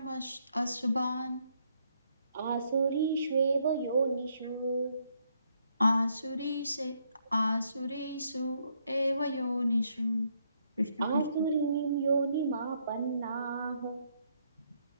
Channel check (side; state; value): both; inverted; correlation -0.74